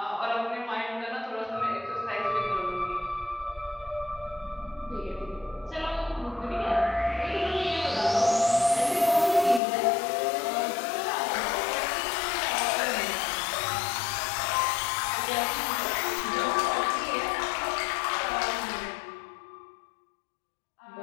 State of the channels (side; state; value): right; drops out; at 9.6 s